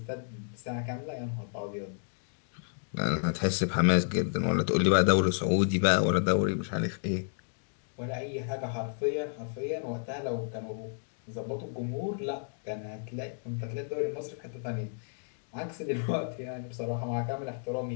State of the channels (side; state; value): right; silent; digital silence